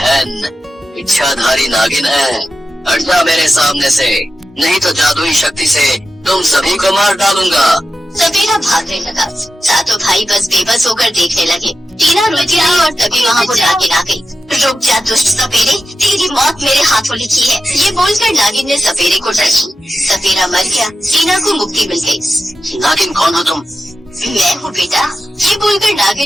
इच्छाधारी नागिन है, हट जा मेरे सामने से, नहीं तो जादुई शक्ति से तुम सभी को मार डालूंगा। सपेरा भागने लगा। सातों भाई बस बेबस होकर देखने लगे। टीना रोती रही और तभी वहाँ वो नागिन आ गई। रुक जा दुष्ट सपेरे, तेरी मौत मेरे हाथों लिखी है। ये बोलकर नागिन ने सपेरे को डसी। सपेरा मर गया। टीना को मुक्ति मिल गई। नागिन कौन हो तुम? मैं हूँ बेटा। ये बोलकर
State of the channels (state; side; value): normal; both; correlation 0.91